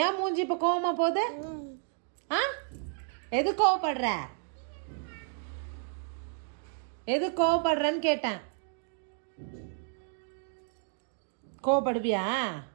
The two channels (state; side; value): silent; left; 57 dB below the other